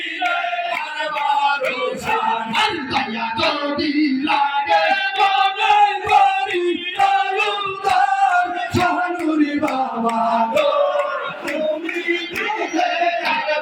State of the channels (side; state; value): both; identical; correlation 1.00